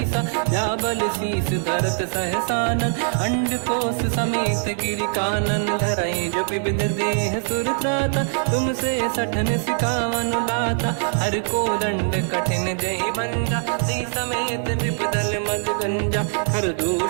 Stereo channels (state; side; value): silent; left; digital silence